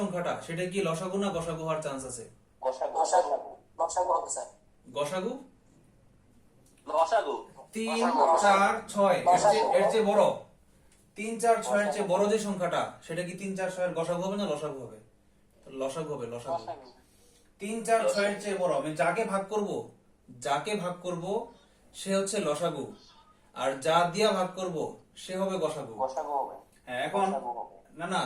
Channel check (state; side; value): identical; both; correlation 1.00